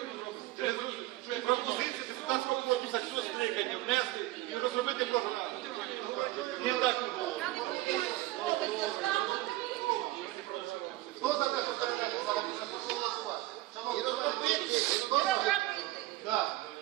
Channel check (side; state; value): left; quieter; 17.5 dB